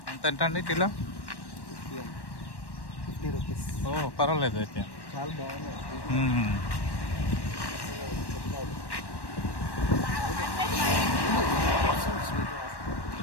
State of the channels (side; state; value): right; late; 1.1 ms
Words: ఎంత అండి కిలో? 50 రూపీస్. ఓ పర్వాలేదు అయితే. చాలా బాగున్నాయి.